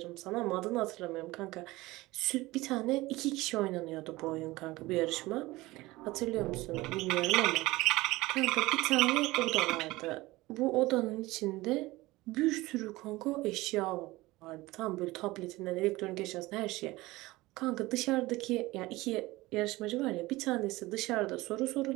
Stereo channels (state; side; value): quieter; left; 19.8 dB